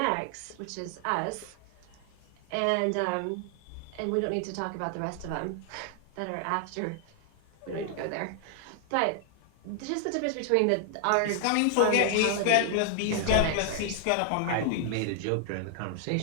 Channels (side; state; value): both; different; correlation 0.00